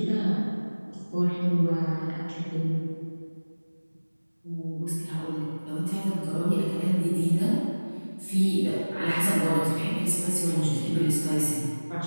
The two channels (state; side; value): inverted; both; correlation -1.00